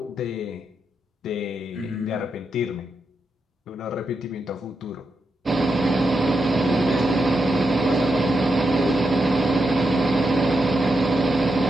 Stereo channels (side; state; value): both; normal; correlation 0.85